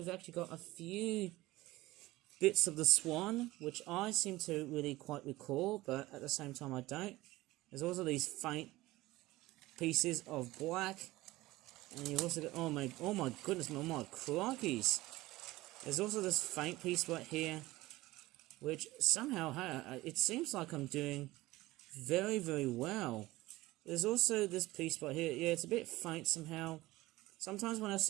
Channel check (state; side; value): quieter; left; 18.5 dB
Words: actually got a few bits of the swan, which I seem to really quite recall, but at the same time I don't. There's also these faint pieces of black. And you've also got, oh my goodness, oh my crikeys. There's also this faint piece right here, which somehow, it seems like I'm doing very, very well. There's also this piece right here. Yeah, it's a bit faint somehow. Sometimes when I